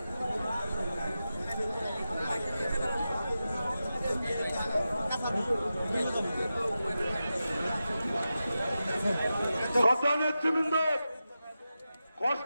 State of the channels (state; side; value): inverted; both; correlation -0.92